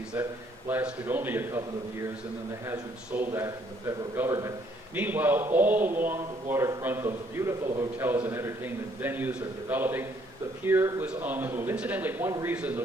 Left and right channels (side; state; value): both; normal; correlation 0.66